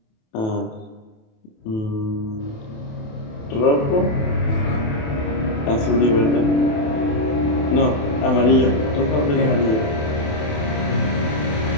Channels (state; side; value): late; right; 28 ms